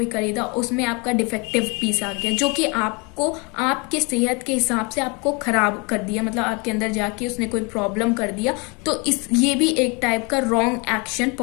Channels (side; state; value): right; quieter; 30.1 dB